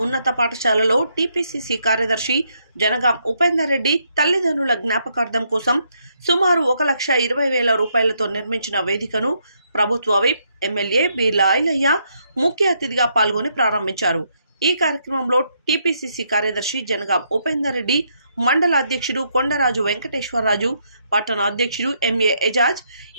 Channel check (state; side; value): inverted; both; correlation -0.75